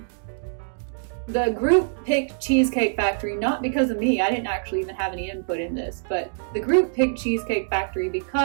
The group picked Cheesecake Factory not because of me. I didn't actually even have any input in this, but the group picked Cheesecake Factory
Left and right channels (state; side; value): silent; left; digital silence